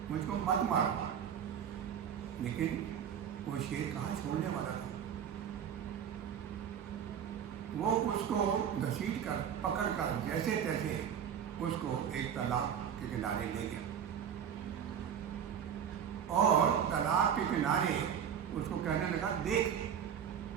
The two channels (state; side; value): quieter; left; 8.5 dB